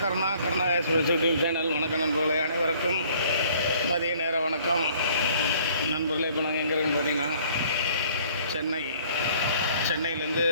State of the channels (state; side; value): inverted; both; correlation -0.57